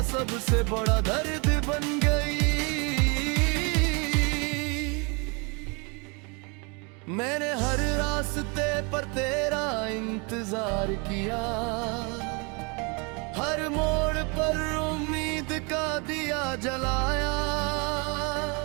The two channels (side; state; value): left; quieter; 31.7 dB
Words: सबसे बड़ा दर्द बन गई। मैंने हर रास्ते पर तेरा इंतजार किया, हर मोड़ पर उम्मीद का दिया जलाया,